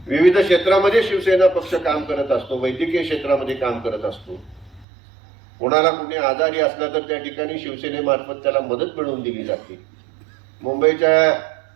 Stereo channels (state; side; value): drops out; left; at 4.9 s